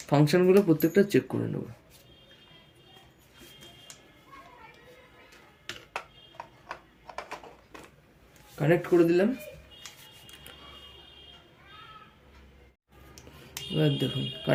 ফাংশনগুলো প্রত্যেকটা চেক করে নেব। কানেক্ট করে দিলাম। এবার দেখুন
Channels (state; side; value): identical; both; correlation 1.00